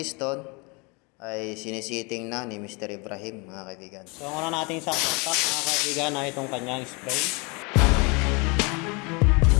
ay sinisiting na ni Mr. Ibrahim mga kaibigan. So ang una nating sasak mga kaibigan ay itong kanyang spray.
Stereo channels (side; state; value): right; quieter; 29.8 dB